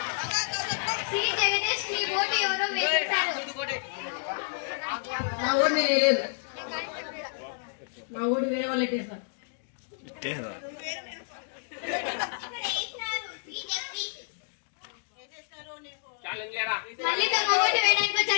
ఓటు ఎవరో వేసేశారు. నా ఊరిని లేదు, నా ఊరు వేరే వాళ్ళు ఎట్టేస్తారు. మళ్ళీ తమ ఓటు వేయడానికి వచ్చే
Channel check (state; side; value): silent; right; digital silence